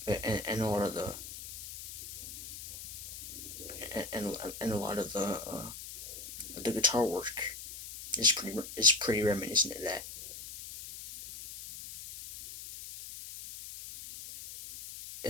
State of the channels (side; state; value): left; noise; hiss, 11 dB below the sound